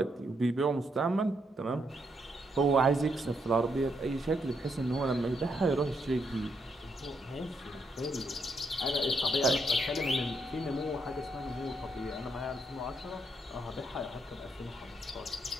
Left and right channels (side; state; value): both; normal; correlation 0.77